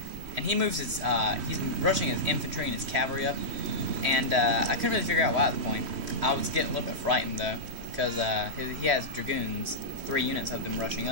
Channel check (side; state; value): left; late; 3.1 ms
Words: and he moves his he's rushing his infantry and his cavalry up, and I couldn't really figure out why at the point. I was getting a little bit frightened though, because he has dragoons, 3 units of them rushing